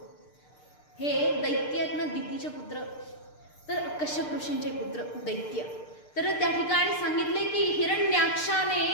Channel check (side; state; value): right; late; 6.7 ms